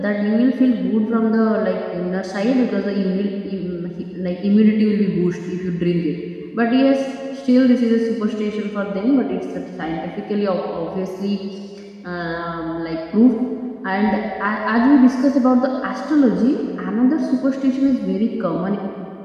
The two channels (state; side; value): identical; both; correlation 1.00